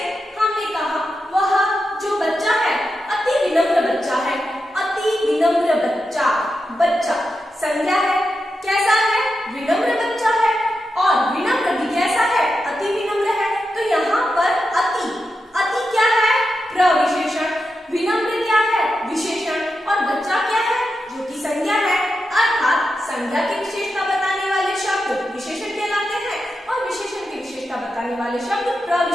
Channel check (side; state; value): both; normal; correlation 0.88